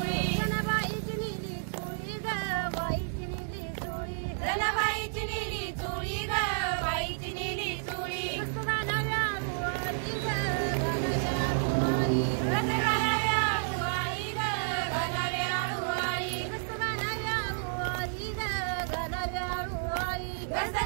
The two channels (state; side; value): silent; left; digital silence